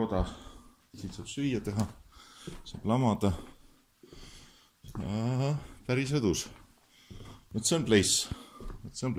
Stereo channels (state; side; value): identical; both; correlation 1.00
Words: Siin saab süüa teha, saab lamada. Ja, päris õdus. Vot see on